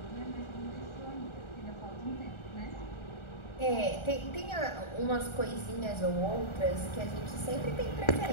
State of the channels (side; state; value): right; late; 1.4 ms